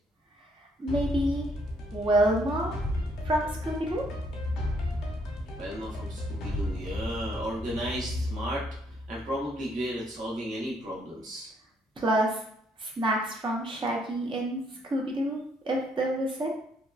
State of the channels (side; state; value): both; normal; correlation 0.70